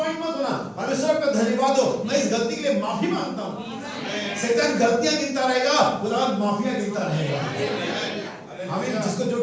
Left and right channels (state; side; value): identical; both; correlation 1.00